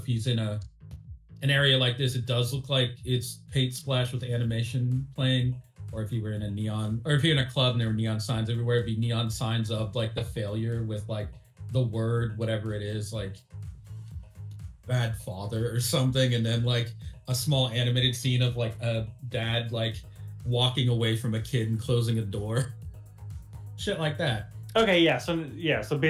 he's in an area like this, it does look like it's paint splash with animation playing. Or if you were in a neon, or if you're in a club and there were neon signs everywhere, it'd be neon signs of like the failure with like the word, whatever it is, like bad father or something. And then like a small animated scene of like a dad like walking away from a kid and closing a door. Shit like that. Okay, so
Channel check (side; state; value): both; identical; correlation 1.00